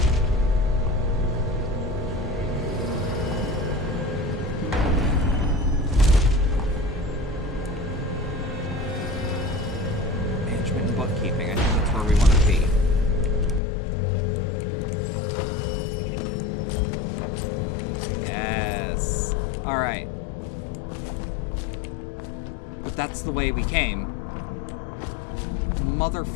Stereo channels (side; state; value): right; drops out; at 13.6 s